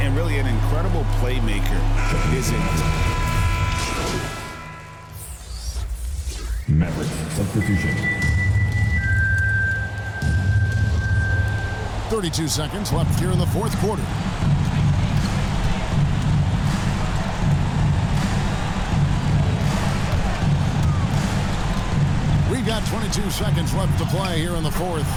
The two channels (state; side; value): identical; both; correlation 1.00